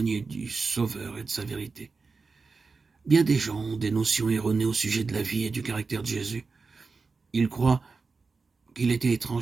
du Sauveur et de sa vérité. Bien des gens ont des notions erronées au sujet de la vie et du caractère de Jésus. Ils croient qu'il était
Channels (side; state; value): left; quieter; 4.4 dB